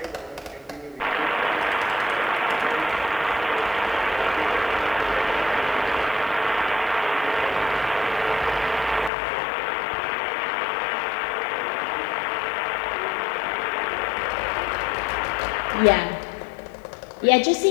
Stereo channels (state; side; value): drops out; right; at 9.1 s